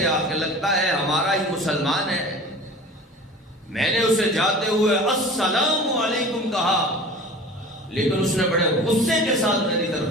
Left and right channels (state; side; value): normal; both; correlation 0.39